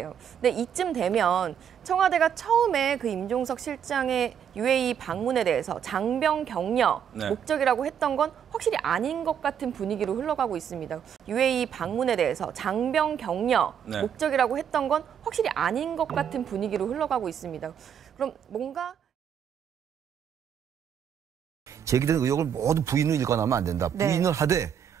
근데 이쯤 되면 청와대가 처음에 그 임종석 실장의 UAE 방문에 대해서 장병 격려 목적이라고 했던 건 확실히 아닌 것 같은 분위기로 흘러가고 있습니다. UAE 방문에 대해서 장병 격려 목적이라고 했던 건 확실히 아닌 것 같은 분위기로 흘러가고 있습니다. 그럼 뭔가 제기된 의혹을 모두 부인을 일관하면 안 된다. 부인을 하되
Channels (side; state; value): left; quieter; 8.5 dB